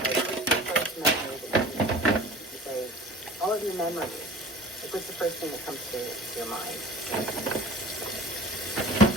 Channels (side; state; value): both; normal; correlation 0.43